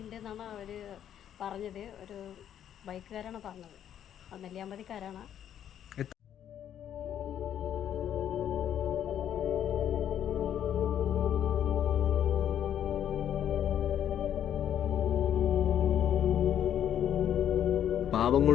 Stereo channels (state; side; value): quieter; right; 10.0 dB